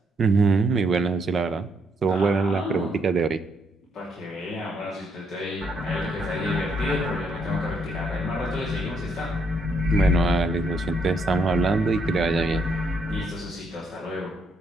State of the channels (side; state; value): both; normal; correlation 0.74